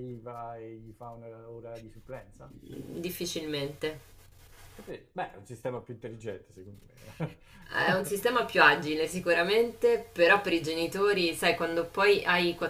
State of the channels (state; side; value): identical; both; correlation 1.00